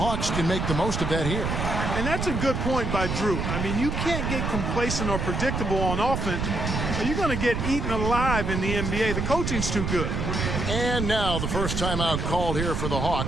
can make the most of that here. And that's a good point by Drew. I mean, you can't get complacent or predictable on offense, or you're going to get eaten alive in the NBA. The coaching's too good. And now the first timeout called here for the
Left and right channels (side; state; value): right; noise; rumble, 1 dB below the sound